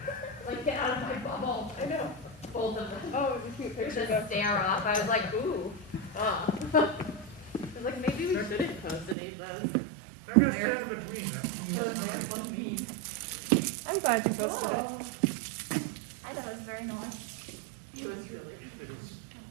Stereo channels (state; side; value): drops out; left; at 9.2 s